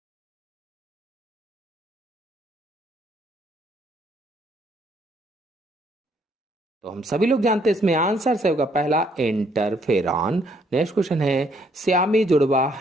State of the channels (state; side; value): normal; both; correlation 0.68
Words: तो हम सभी लोग जानते हैं, इसमें आंसर सही होगा पहला, इंटरफेरॉन। नेक्स्ट क्वेश्चन है, श्यामी जुड़वा